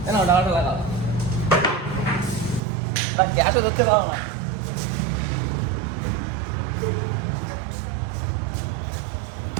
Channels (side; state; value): left; drops out; at 2.6 s